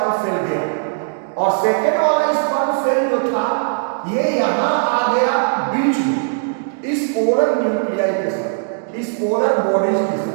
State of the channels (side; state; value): left; silent; digital silence